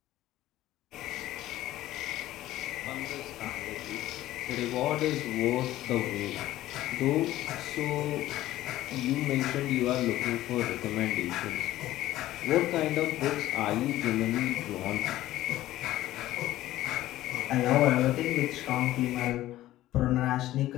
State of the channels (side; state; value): right; quieter; 14.9 dB